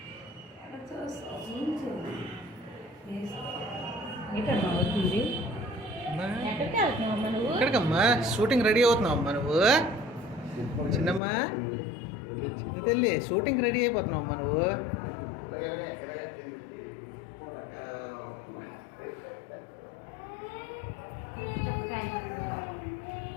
ఎక్కడికమ్మా షూటింగ్ రెడీ అవుతున్నావమ్మా నువ్వు? చిన్నమ్మా చిన్న తల్లి షూటింగ్ రెడీ అయిపోతున్నావమ్మా నువ్వు?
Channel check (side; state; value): right; drops out; at 11.2 s